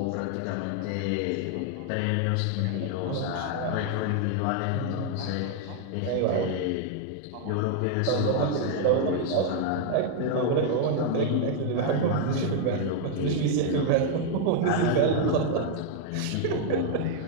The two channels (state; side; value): different; both; correlation 0.00